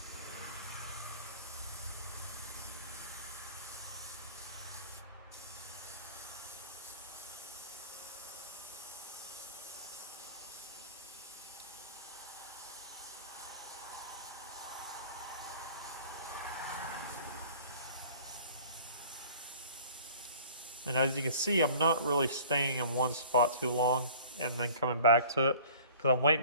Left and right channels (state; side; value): inverted; both; correlation -0.47